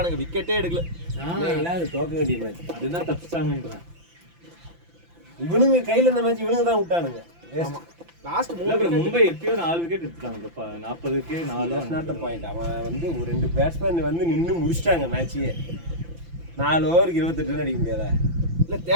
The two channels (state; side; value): late; left; 5.9 ms